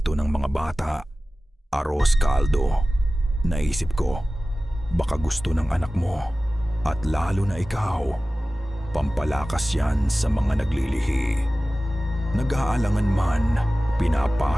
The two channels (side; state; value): both; normal; correlation 0.97